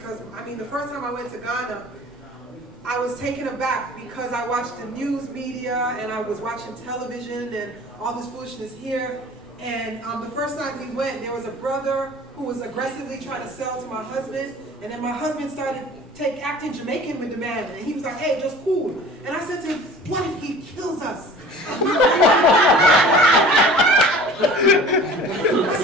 I mean the first time I went to Ghana, I was taken aback because I watched the news media and I was watching television and all this foolishness here. And the first time we went, there was a brother who was aggressively trying to sell to my husband, and then my husband started acting Jamaican with the man, and he was like, hey, just cool. And I said to him, what if he kills us? I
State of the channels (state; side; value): normal; both; correlation 0.44